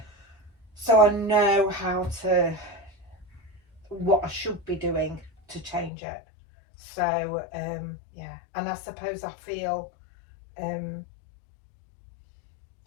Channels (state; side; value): drops out; right; at 5.9 s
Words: So I know what I should be doing to change it. So and I suppose I feel